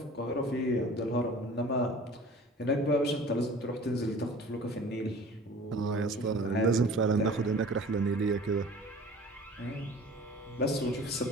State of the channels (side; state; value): both; normal; correlation 0.44